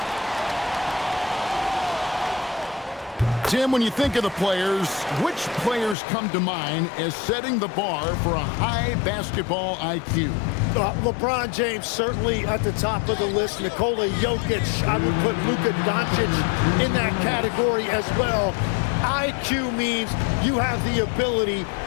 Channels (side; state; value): right; drops out; at 6.0 s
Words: Tim, when you think of the players, which players come to mind as setting the bar for a high basketball IQ? LeBron James certainly at the top of the list. Nikola Jokic, I would put Luka Doncic in that category as well. IQ means you have the ability